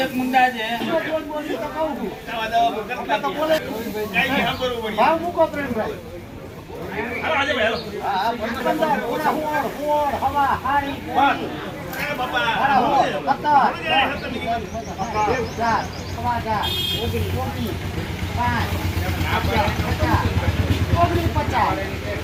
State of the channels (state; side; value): identical; both; correlation 1.00